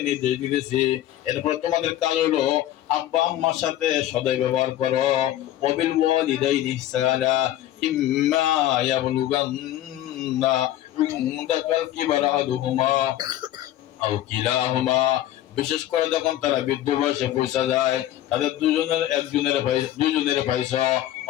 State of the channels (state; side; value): quieter; right; 13.2 dB